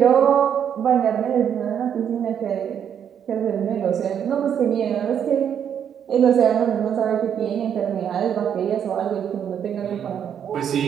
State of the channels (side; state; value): left; quieter; 8.6 dB